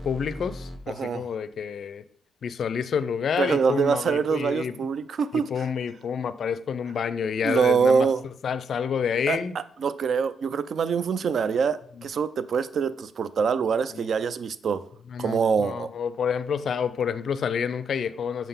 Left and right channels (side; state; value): both; normal; correlation 0.76